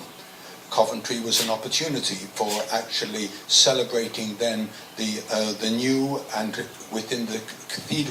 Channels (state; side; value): identical; both; correlation 1.00